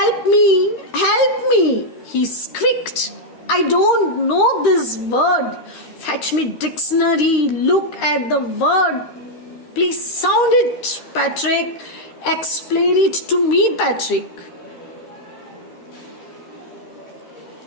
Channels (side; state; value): right; late; 13 ms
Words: me, he squeaked. I don't know this word. Fetch me dictionary, look at the word. Please sound it, Patrick. Explain it to me, Patrick.